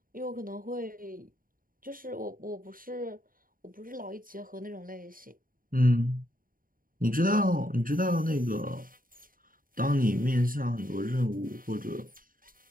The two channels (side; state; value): left; late; 0.41 ms